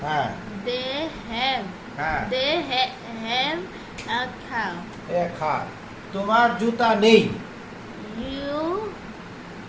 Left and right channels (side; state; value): both; identical; correlation 1.00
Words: হ্যাঁ They have. হ্যাঁ They have a cow. এক হাত তোমার জুতা নেই